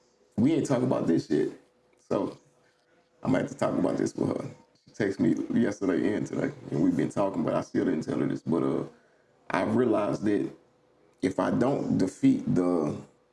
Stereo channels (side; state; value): both; identical; correlation 1.00